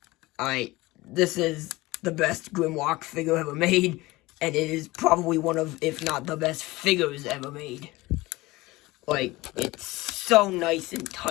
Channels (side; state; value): right; quieter; 20.4 dB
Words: This is the best Grimlock figure ever made, and it is probably one of, if not the best figures ever made. Like, it's so nice and